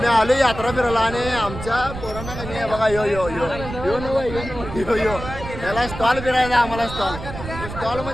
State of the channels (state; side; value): noise; right; rumble, 10 dB below the sound